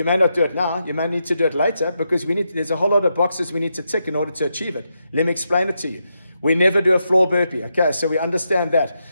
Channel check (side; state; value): both; inverted; correlation -0.84